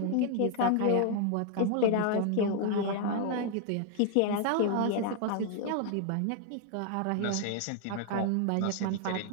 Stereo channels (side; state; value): both; different; correlation 0.00